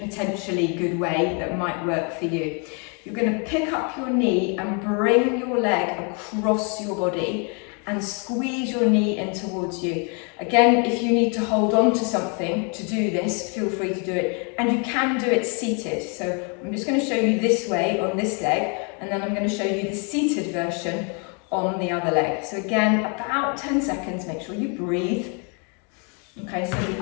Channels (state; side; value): quieter; right; 36.3 dB